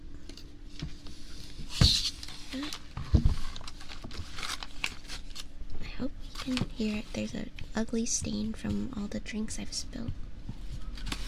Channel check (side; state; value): both; identical; correlation 1.00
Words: I hope you can hear it. There's an ugly stain from all the drinks I've spilled.